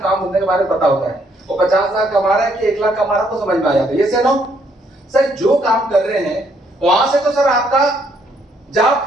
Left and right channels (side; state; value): both; normal; correlation 0.69